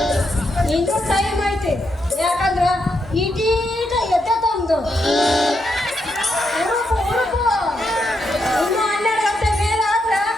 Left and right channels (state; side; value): normal; both; correlation 0.81